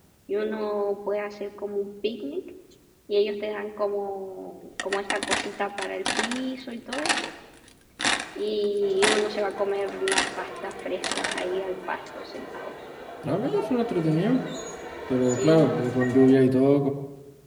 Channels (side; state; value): both; identical; correlation 1.00